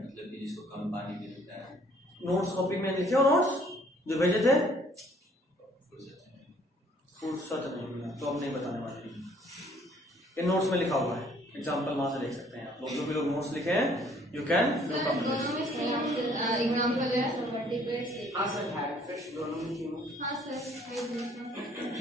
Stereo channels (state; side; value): normal; both; correlation 0.60